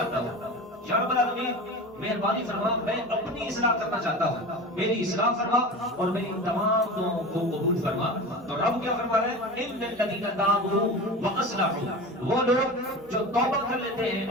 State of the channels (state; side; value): normal; both; correlation 0.30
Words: ہوں، یا رب العالمین مہربانی فرما، میں اپنی اصلاح کرنا چاہتا ہوں، میری اصلاح فرما اور میری تمام دعاؤں کو قبول فرما۔ تو رب کیا فرما رہے ہیں؟ ان الذین تابوا واصلحوا، وہ لوگ جو توبہ کر لیتے ہیں